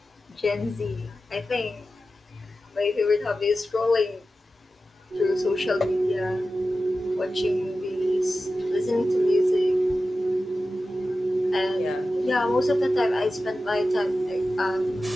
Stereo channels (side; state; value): both; normal; correlation 0.93